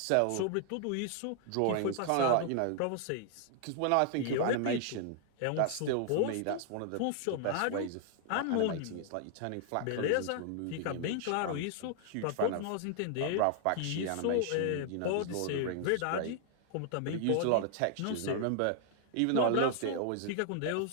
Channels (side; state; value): both; different; correlation 0.00